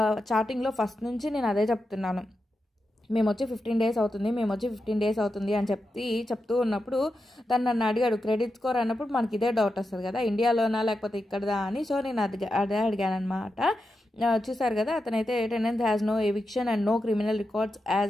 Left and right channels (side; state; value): both; normal; correlation 0.89